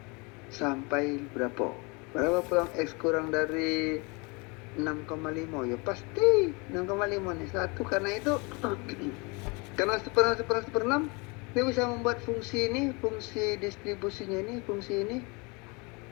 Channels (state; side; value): quieter; right; 28.9 dB